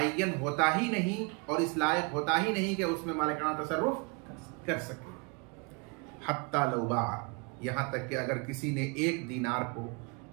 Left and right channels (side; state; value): left; quieter; 31.9 dB